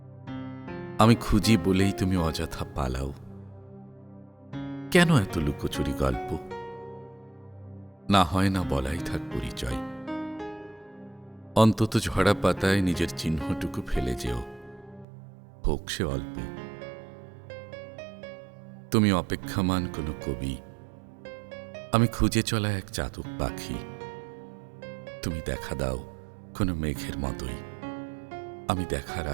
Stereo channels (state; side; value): drops out; left; at 15.1 s